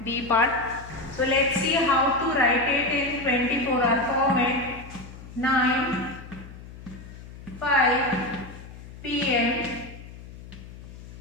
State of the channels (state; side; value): noise; left; hum, 15 dB below the sound